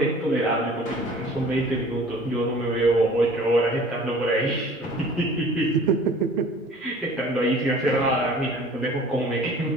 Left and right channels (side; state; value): both; normal; correlation 0.48